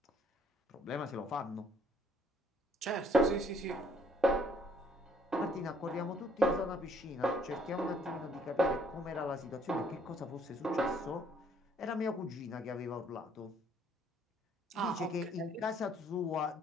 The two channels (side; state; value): both; normal; correlation 0.64